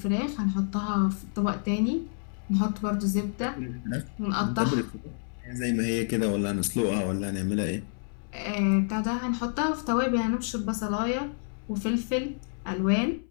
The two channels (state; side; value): silent; right; 59 dB below the other